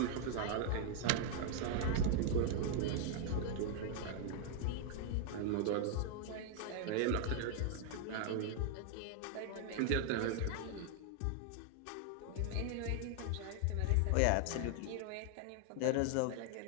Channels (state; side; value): different; both; correlation 0.00